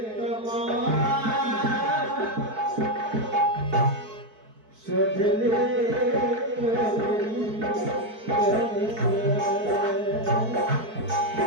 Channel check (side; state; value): left; late; 4.6 ms